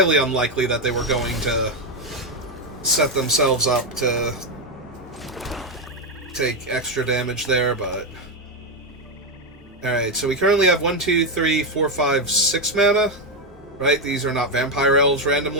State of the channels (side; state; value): both; normal; correlation 0.07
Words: unlikely that they were going to set themselves up to take extra damage there, but... Alright, so we currently have 1, 2, 3, 4, 5, 6 mana. Right? These are not vampire elves